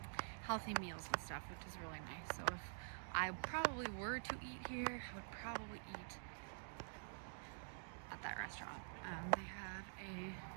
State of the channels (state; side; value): silent; left; digital silence